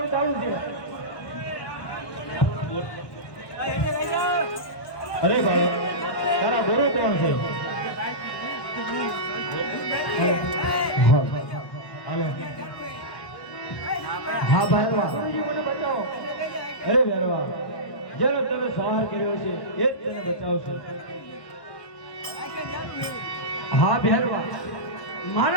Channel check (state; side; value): late; right; 1.2 ms